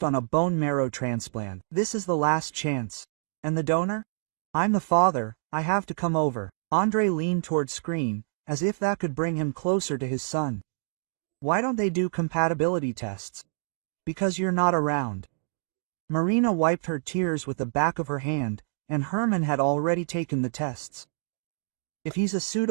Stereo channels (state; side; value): silent; left; digital silence